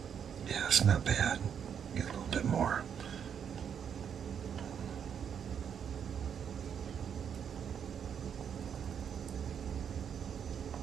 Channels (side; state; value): left; quieter; 8.0 dB